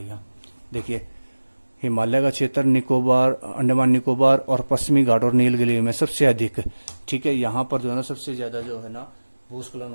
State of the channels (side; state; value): both; inverted; correlation -1.00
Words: देखिए, हिमालय का क्षेत्र निकोबार, अंडमान निकोबार और पश्चिमी घाट और नीलगिरी में सबसे अधिक, ठीक है, यहाँ पर जो है ना सबसे ज्यादा जो है ना भूस्खलन